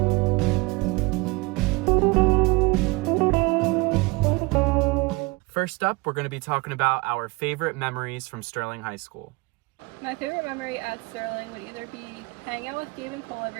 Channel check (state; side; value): quieter; left; 24.9 dB